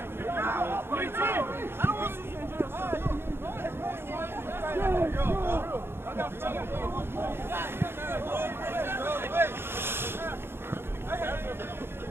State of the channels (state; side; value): late; left; 0.11 ms